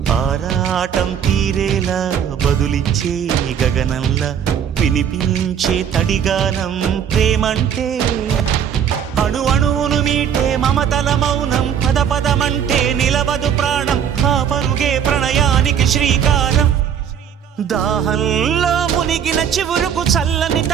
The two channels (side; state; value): left; quieter; 8.4 dB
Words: ఆరాటం తీరేలా బదులిచ్చే గగనంలా వినిపించే తడిగానం ప్రేమంటే అణు అణువును మీటే మమతల మౌనం పద పదమంటే నిలవదు ప్రాణం ఆ పరుగే ప్రణయానికి శ్రీకారం దాహంలో మునిగిన చివురుకు చల్లని